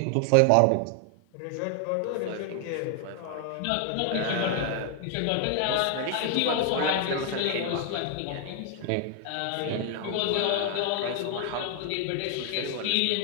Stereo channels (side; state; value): both; different; correlation 0.00